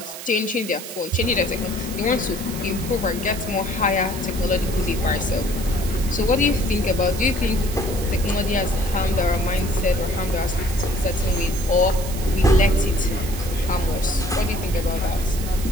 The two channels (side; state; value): right; noise; hiss, 11 dB below the sound